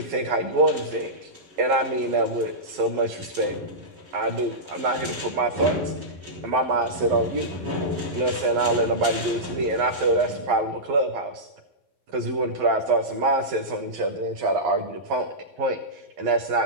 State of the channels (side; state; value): left; late; 11 ms